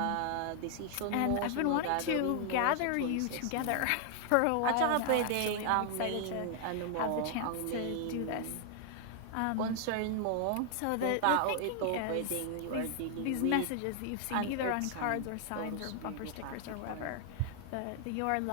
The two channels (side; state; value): both; different; correlation 0.00